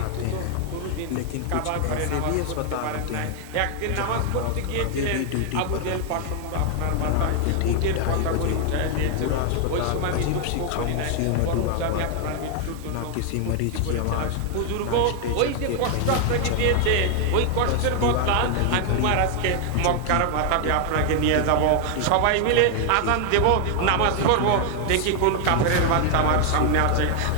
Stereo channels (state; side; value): different; both; correlation 0.00